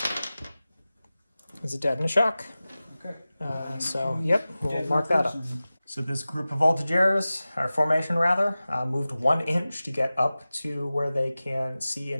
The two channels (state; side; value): inverted; both; correlation -0.96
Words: is a dead and a shock. Okay. So, yep, we'll Dead mark that up. person. So this group of voltigeurs, or formation rather, moved 1 inch to get up to where they can see